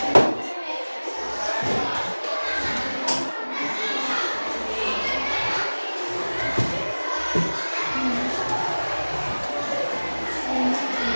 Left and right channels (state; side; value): inverted; both; correlation -1.00